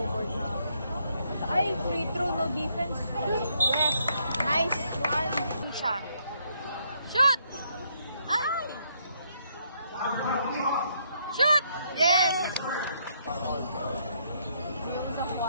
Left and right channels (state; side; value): inverted; both; correlation -0.73